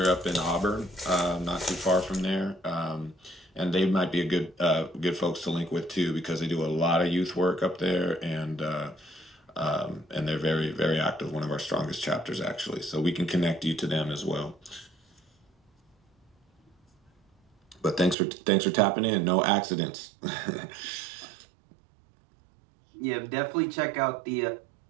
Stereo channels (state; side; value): drops out; left; at 18.2 s